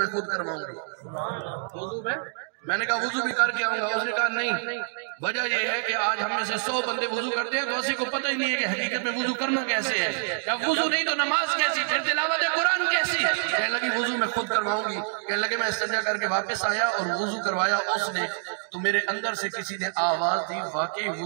خود کرواؤں گی. وضو میں نے کہا وضو بھی کر کے آؤں گا. اس نے کہا نہیں, وجہ یہ ہے کہ آج ہم میں سے 100 بندے وضو کرتے ہیں تو اسی کو پتہ ہی نہیں ہے کہ حقیقت میں وضو کرنا کیسے ہے. جب وضو نہیں تو نماز کیسی, پھر تلاوت قرآن کیسی. کہنے لگی وضو میں خود کرواؤں گی. کہنے لگے میں استنجا کر کے واپس آیا اور وضو کروایا اس نے, تو میرے اندر سے کسی نے آواز دی واقعی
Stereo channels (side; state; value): left; silent; digital silence